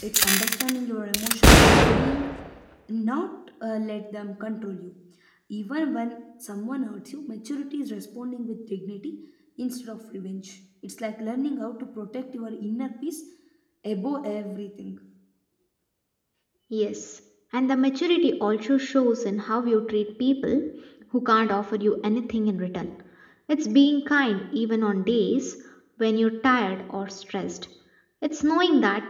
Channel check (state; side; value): identical; both; correlation 1.00